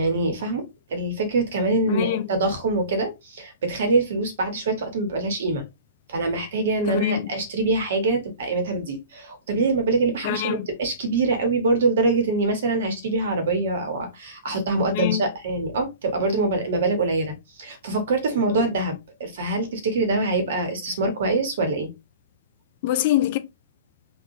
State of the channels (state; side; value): inverted; both; correlation -0.41